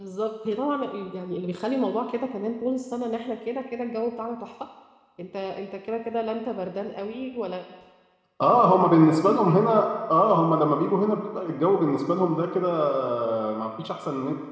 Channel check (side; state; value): both; identical; correlation 1.00